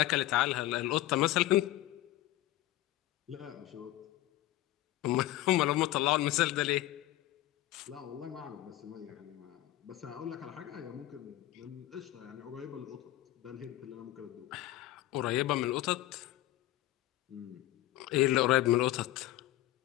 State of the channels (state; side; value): quieter; right; 15.5 dB